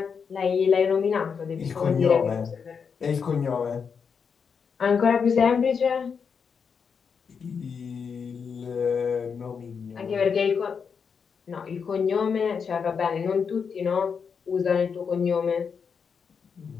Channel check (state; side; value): quieter; right; 6.2 dB